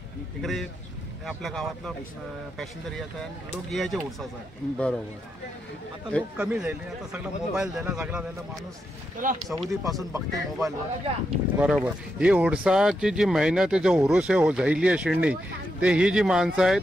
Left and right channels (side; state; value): both; normal; correlation 0.84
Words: इकडे आपल्या गावातला पॅसेंजर यायचा आणि लोक यायचे उडसासाठी. बरोबर. आता लोक कमी झाले. आता सगळा मोबाईल द्यायला सगळा द्यायला माणूस सौदी पासून बघते मोबाईलवर. बरोबर. ही उडसाची जी मेहनत आहे, जो हुरूस आहे झायली आहे शिडणी, ते ही जी माणसं आहेत